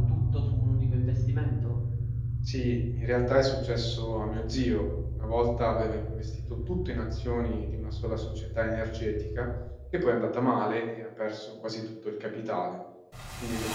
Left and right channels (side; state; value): both; identical; correlation 1.00